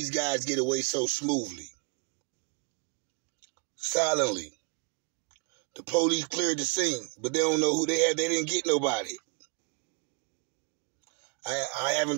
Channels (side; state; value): left; quieter; 29.9 dB